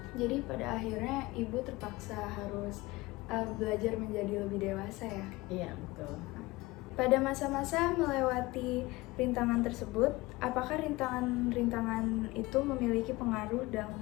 Jadi pada akhirnya ibu terpaksa harus belajar menjadi lebih dewasa ya. Iya betul. Pada masa-masa melewati rintangan tersebut, apakah rintangan-rintangan itu memiliki pengaruh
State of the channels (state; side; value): quieter; right; 21.0 dB